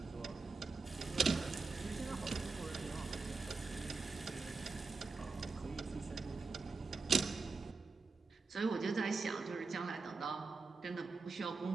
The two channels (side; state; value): left; quieter; 4.2 dB